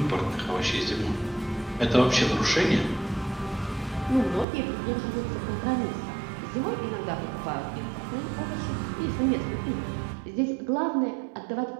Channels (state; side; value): drops out; left; at 4.5 s